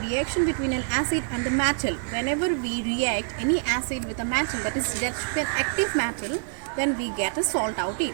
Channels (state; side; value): silent; left; digital silence